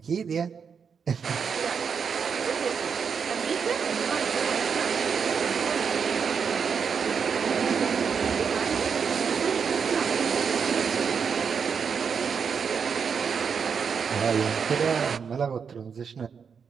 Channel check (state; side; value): quieter; left; 6.4 dB